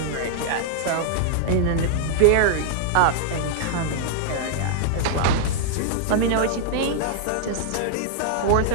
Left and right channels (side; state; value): both; different; correlation -0.01